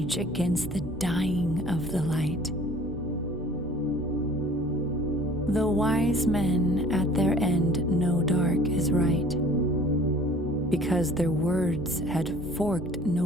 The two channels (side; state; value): both; normal; correlation 0.50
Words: against the dying of the light. The wise men at their end know dark is right, because their words had forked